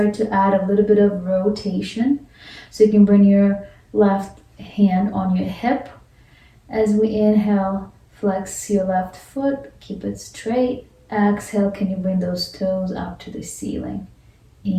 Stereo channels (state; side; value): identical; both; correlation 1.00